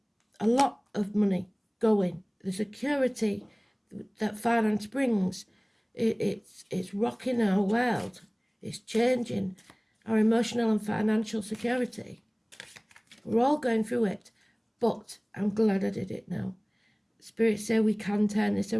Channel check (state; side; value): identical; both; correlation 1.00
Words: a lot of money going. The security that finance brings, it's rocking our world. It's changing our emotional and financial security. We're all going through it, but I'm glad I did it now. Spirits say we can turn this